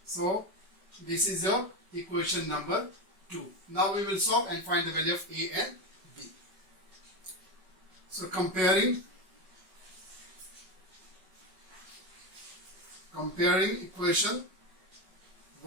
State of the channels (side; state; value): left; late; 5.3 ms